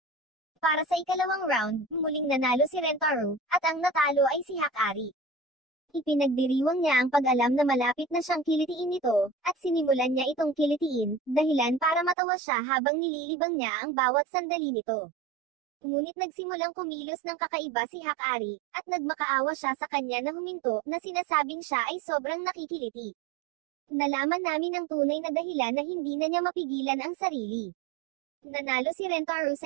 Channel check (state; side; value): drops out; left; at 12.2 s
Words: Para sa ikalawang round, muling nanalo si Rentaro, at ang natalo ay si Hakari. Ipinagdiriwang niya ang pag-alam na malapit na siyang kilitiin ito, at sinimulan niya itong kilitiin, dahilan para matawa siya habang nililibang niya ang bawat sandali nito. Ngunit nagsimulang kumilos ng kakaiba si Hakari, at nagmakaawa siya sa kanya na huminto, na sinasabing siya ay sobrang nakikiliti. Nalaman namin ang tunay na dahilan na hindi na niya mapigilan ang sarili. Nanalo si Rentaro